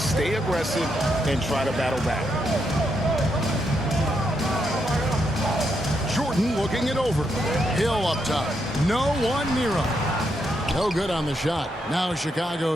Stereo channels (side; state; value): both; normal; correlation 0.80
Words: aggressive and try to battle back. Jordan looking it over. Hill up top. No one near him. No good on the shot. Now